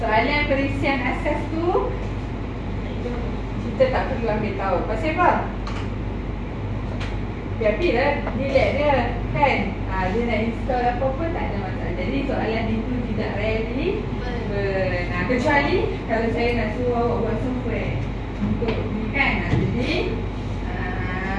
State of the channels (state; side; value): identical; both; correlation 1.00